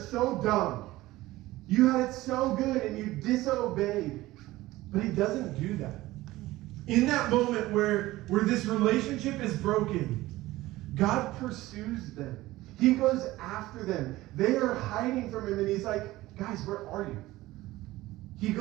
dumb. You had it so good and you disobeyed. But he doesn't do that. In that moment where this relationship is broken, God pursues them. He goes after them. They are hiding from him, and he's like, guys, where are you? He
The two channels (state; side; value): quieter; left; 17.6 dB